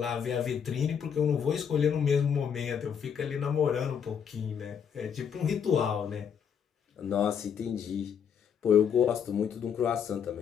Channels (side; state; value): right; quieter; 7.6 dB